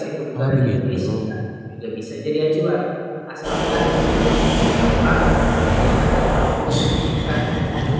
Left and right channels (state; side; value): identical; both; correlation 1.00